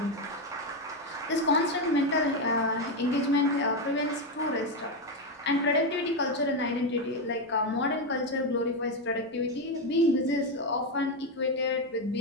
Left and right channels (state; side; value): normal; both; correlation 0.08